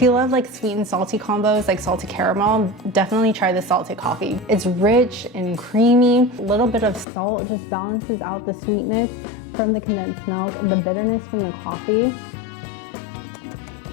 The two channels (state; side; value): drops out; right; at 7.1 s